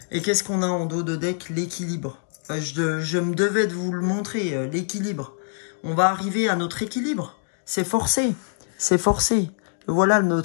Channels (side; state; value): right; silent; digital silence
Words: Et qu'est-ce qu'on a en dos de deck? L'équilibre. Je me devais de vous le montrer, l'équilibre. On va arriver à notre équilibre. C'est forcé. C'est forcé. Voilà